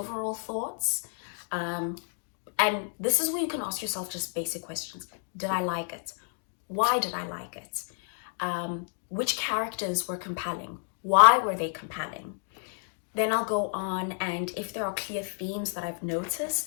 thoughts. And this is where you can ask yourself just basic questions. Did I like it? Why did I like it? Which characters were compelling? Why were they compelling? Then I'll go on, and if there are clear themes that I've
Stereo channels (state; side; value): silent; right; 55 dB below the other